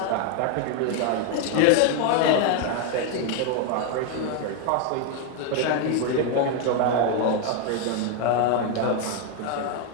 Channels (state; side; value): different; both; correlation 0.01